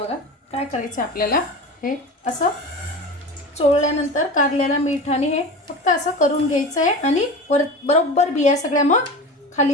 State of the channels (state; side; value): normal; both; correlation 0.31